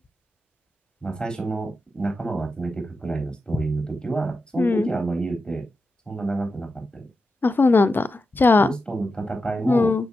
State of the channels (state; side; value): normal; both; correlation 0.89